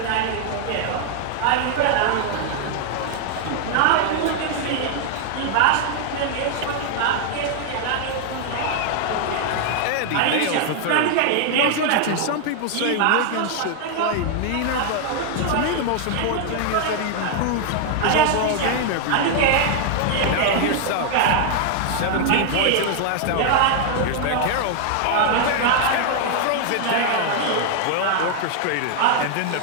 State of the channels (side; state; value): both; different; correlation 0.00